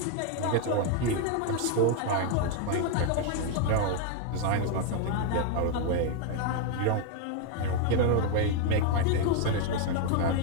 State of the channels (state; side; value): different; both; correlation 0.01